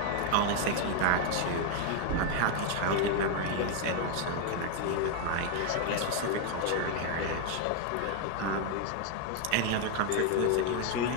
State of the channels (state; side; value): different; both; correlation 0.01